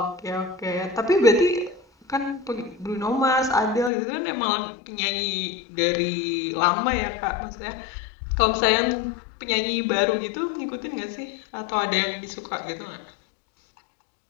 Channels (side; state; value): right; drops out; at 3.9 s